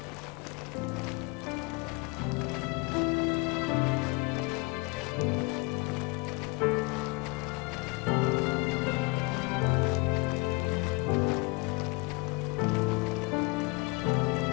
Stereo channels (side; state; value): right; quieter; 27.7 dB